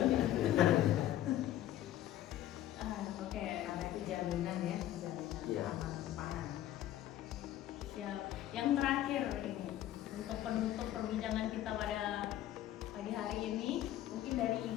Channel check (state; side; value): quieter; right; 12.9 dB